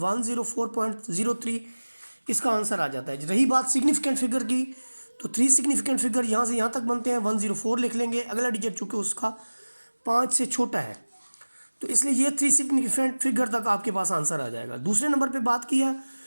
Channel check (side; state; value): both; inverted; correlation -1.00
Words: इसका आंसर आ जाता है। रही बात सिग्निफिकेंट फिगर की, तो 3 सिग्निफिकेंट फिगर यहाँ से यहाँ तक बनते हैं, 104 लिख लेंगे। अगला डिजिट चूँकि उसका 5 से छोटा है, तो इसलिए ये 3 सिग्निफिकेंट फिगर तक आपके पास आंसर आ जाएगा। दूसरे नंबर पर बात की है